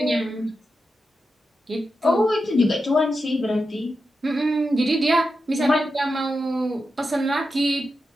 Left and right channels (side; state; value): both; normal; correlation 0.89